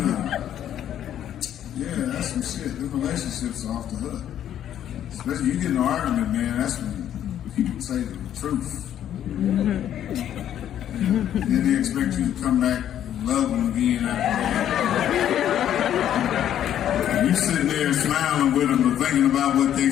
Yeah, that's some shit. The relationships are off the hook. Especially you get in an argument, man, that's when people say the truth. Then they expect you to come back and love them again after that. You sitting there smiling with them and thinking about what they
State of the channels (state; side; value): quieter; right; 10.7 dB